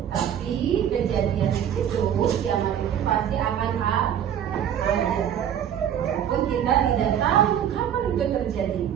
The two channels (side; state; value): left; quieter; 9.5 dB